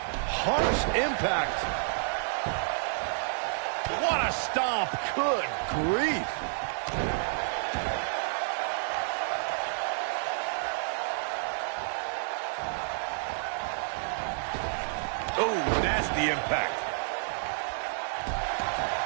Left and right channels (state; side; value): silent; left; digital silence